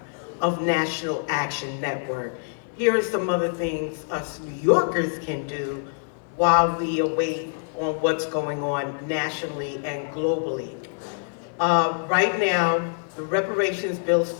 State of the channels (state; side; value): silent; right; digital silence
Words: of National Action Network, here are some other things us New Yorkers can do while we await on what's going on nationally and globally. Right now, the reparations bill